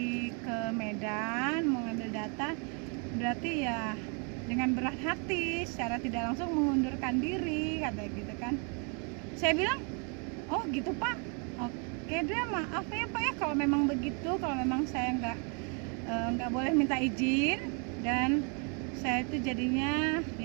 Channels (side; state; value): left; quieter; 37.1 dB